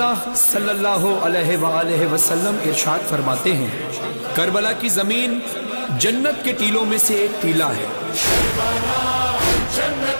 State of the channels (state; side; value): inverted; both; correlation -1.00